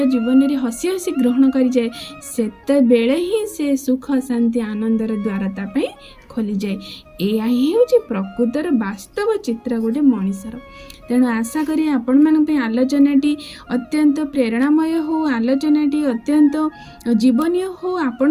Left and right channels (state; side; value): identical; both; correlation 1.00